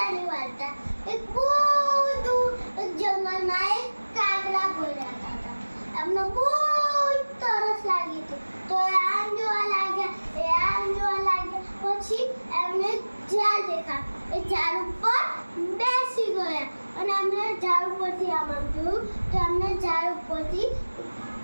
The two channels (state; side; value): inverted; both; correlation -1.00